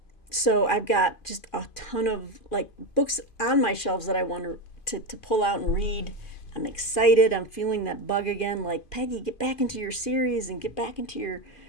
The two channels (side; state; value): right; late; 2.4 ms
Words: So I've got just a ton of books on my shelves that I want to pull out and read. I'm excited. I'm feeling that bug again. Like, Peggy, get back into your series and get back into your,